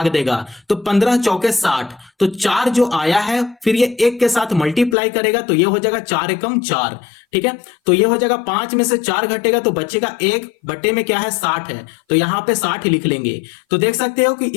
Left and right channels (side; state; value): right; drops out; at 5.0 s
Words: देगा, तो 15 चौके 60, तो 4 जो आया है फिर ये 1 के साथ मल्टीप्लाई करेगा, तो ये हो जाएगा 4 एकम 4, ठीक है। तो ये हो जाएगा 5 में से 4 घटेगा तो बचेगा 1, बटे में क्या है 60 है, तो यहां पे 60 लिख लेंगे। तो देख सकते हो कि